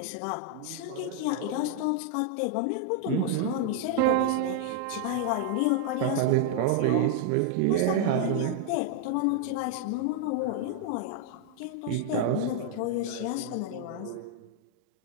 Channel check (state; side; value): different; both; correlation 0.00